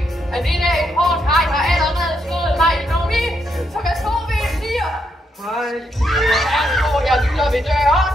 Han ligner en hård hej, har allerede slået mig i nomi. Så hvad tror vi, I siger? Hej. Jeg lytter ved døren.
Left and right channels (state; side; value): normal; both; correlation 0.79